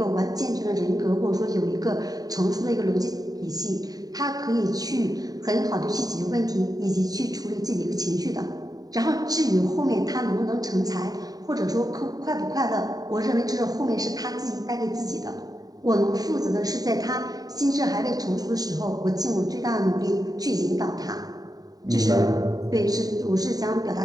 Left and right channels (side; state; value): left; late; 0.18 ms